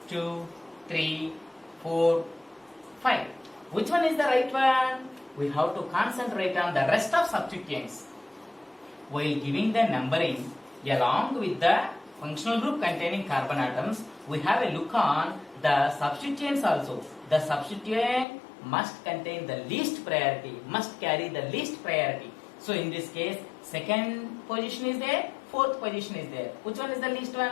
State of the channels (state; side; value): drops out; right; at 18.2 s